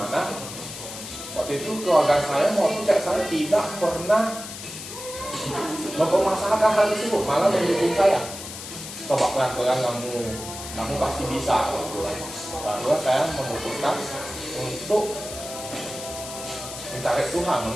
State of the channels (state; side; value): noise; left; hiss, 10 dB below the sound